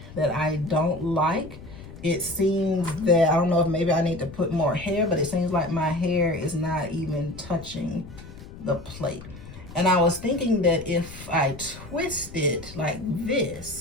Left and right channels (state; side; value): noise; left; rumble, 15 dB below the sound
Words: that I don't like, it seems that, I don't know if maybe I need to put more hair, but it seems like my hair is not even touching the plate. And I was thinking that if I twist it like